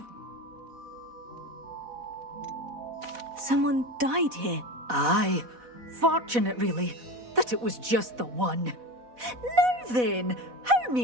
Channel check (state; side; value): late; left; 4.1 ms